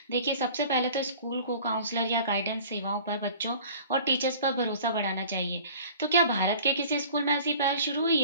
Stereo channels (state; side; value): inverted; both; correlation -0.46